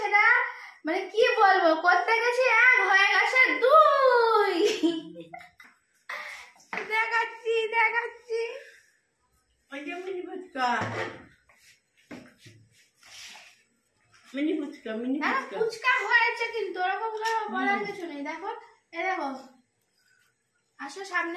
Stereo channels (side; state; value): both; identical; correlation 1.00